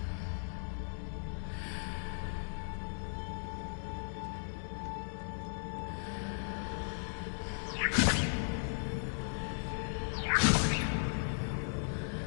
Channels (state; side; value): silent; right; digital silence